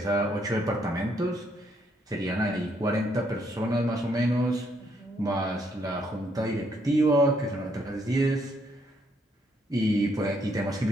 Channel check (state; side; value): normal; both; correlation 0.72